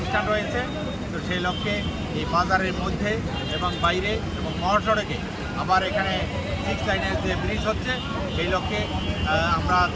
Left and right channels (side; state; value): both; identical; correlation 1.00